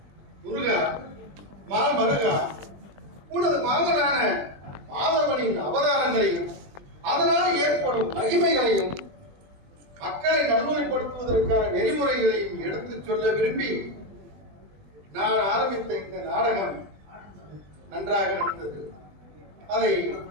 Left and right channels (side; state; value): left; late; 20 ms